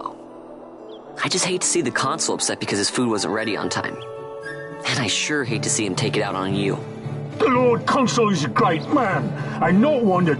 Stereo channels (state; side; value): identical; both; correlation 1.00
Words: I just hate to see the Consul upset because his food wasn't ready on time. And I sure hate to see him take it out on you. The Lord Consul is a great man, and not one to